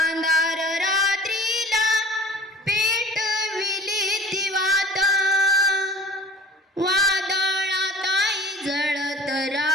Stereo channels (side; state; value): both; normal; correlation 0.44